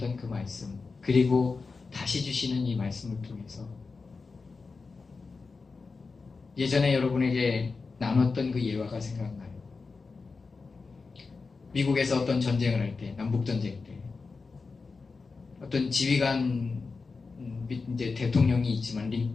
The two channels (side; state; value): right; quieter; 4.4 dB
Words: 그 말씀 그리고 다시 주시는 이 말씀을 통해서 예전에 여러분에게 나눴던 그 예화가 생각나요. 미국에서 어떤 전쟁을 할 때, 남북전쟁 때 어떤 지휘관 이제 대통령이 있지만